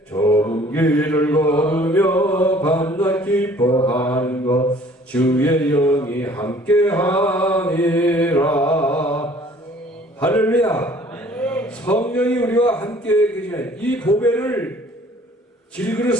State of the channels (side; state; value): both; normal; correlation 0.54